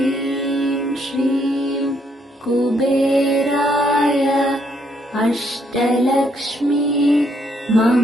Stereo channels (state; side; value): normal; both; correlation 0.72